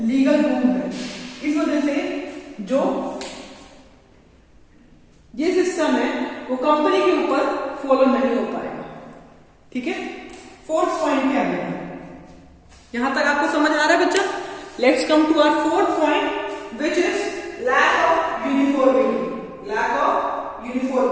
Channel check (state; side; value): identical; both; correlation 1.00